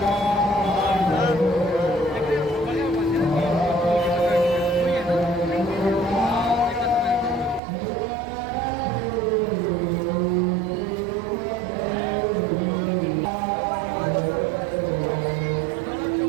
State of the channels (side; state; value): left; drops out; at 7.6 s